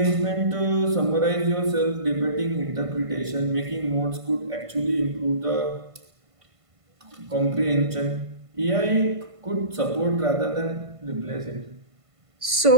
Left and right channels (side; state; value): left; late; 1.5 ms